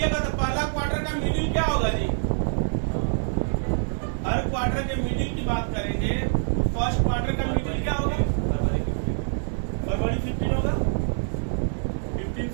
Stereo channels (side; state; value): left; silent; 59 dB below the other